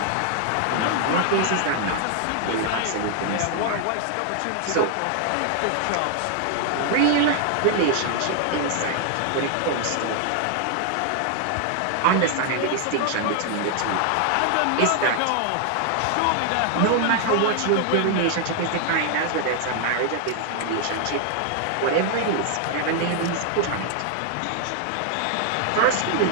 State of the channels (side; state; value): both; different; correlation 0.00